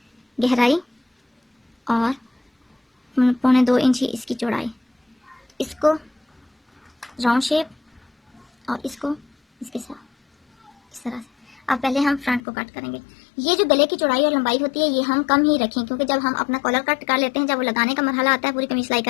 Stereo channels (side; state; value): right; drops out; at 12.4 s